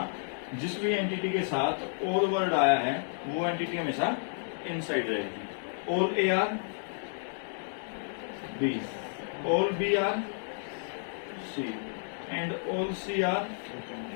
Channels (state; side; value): silent; right; digital silence